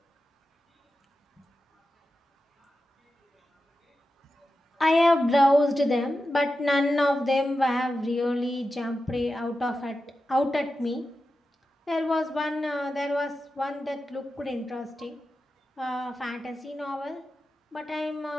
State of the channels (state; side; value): normal; both; correlation 0.91